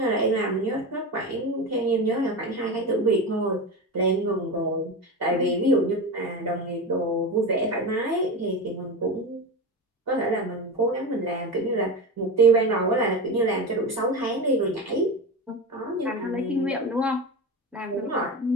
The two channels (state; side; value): normal; both; correlation 0.23